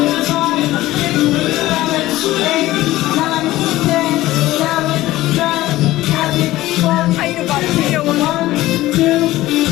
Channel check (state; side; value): quieter; right; 16.6 dB